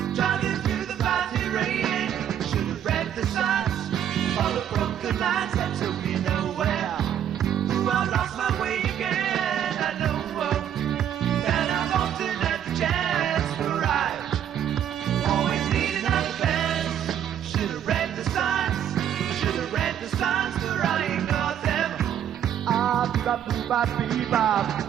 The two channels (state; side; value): quieter; left; 9.8 dB